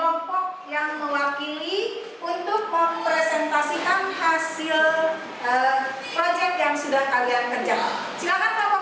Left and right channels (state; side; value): identical; both; correlation 1.00